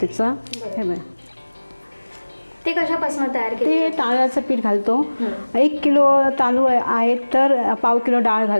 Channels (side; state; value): both; inverted; correlation -1.00